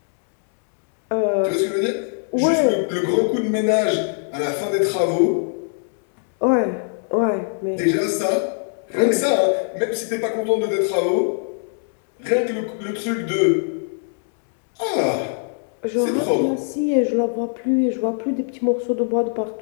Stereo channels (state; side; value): silent; right; 65 dB below the other